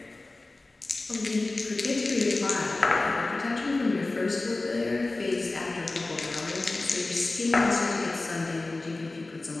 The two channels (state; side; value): quieter; right; 3.1 dB